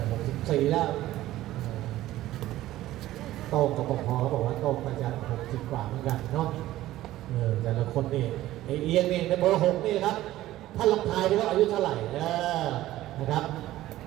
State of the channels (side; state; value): left; quieter; 15.2 dB